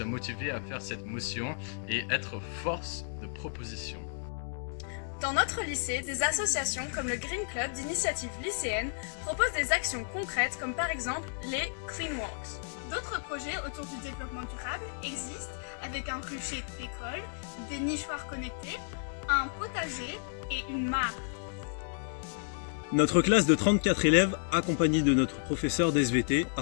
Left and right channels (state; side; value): silent; right; digital silence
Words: motivés à faire cette motion et être force de proposition. Dans notre lycée, des associations comme le Green Club d'initiative lycéenne proposent des actions concrètes comme par exemple les Clean Walks. D'autres projets autour du développement durable existent avec un rucher d'école, des nichoirs connectés, un potager et une mare. Notre classe de 34 élèves, accompagnée de notre professeur d'SVT, a